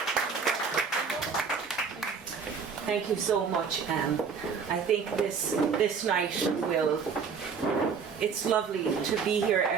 Thank you so much, Anne. I think this night it's lovely to be here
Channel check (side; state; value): left; quieter; 5.9 dB